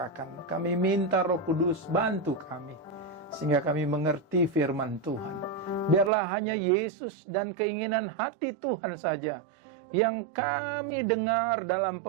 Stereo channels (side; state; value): left; drops out; at 6.1 s